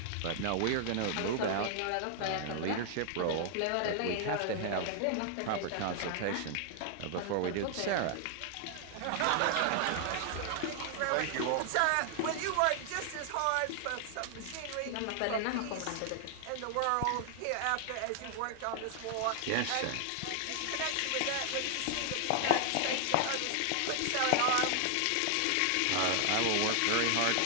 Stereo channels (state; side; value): different; both; correlation 0.00